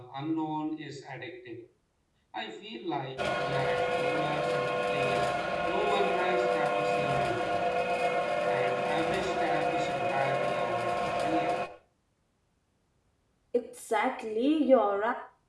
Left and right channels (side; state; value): both; identical; correlation 1.00